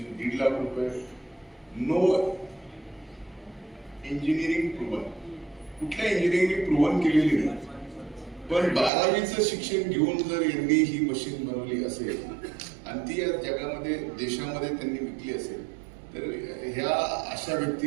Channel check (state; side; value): drops out; left; at 8.9 s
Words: 1.5 लाख रुपये. नो इंजिनिअरिंग प्रूव्हन, कुठल्या इंजिनिअरिंग प्रूव्हन केलेली नाही. पण 12वीचं शिक्षण घेऊन जर यांनी ही मशीन बनवली असेल आणि ती या जगामध्ये, देशामध्ये त्यांनी विकली असेल, तर ह्या अशा